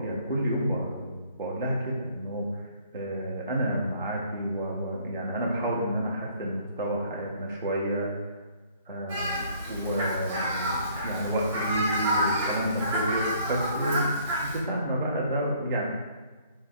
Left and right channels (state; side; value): inverted; both; correlation -0.60